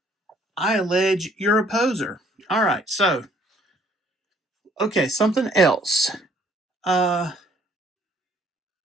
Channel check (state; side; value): normal; both; correlation 0.61